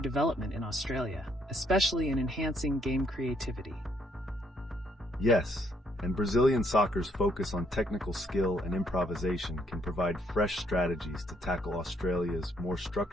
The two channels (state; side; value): normal; both; correlation 0.70